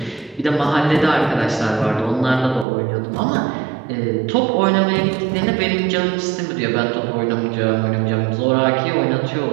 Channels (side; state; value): left; drops out; at 2.7 s